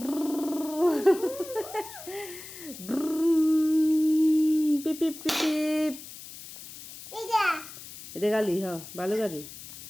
পিপি পিপি এটা গালি হ ভালো গালি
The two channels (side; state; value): left; noise; hiss, 15 dB below the sound